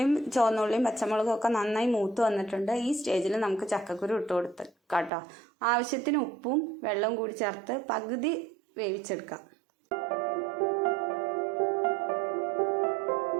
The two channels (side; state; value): left; drops out; at 5.1 s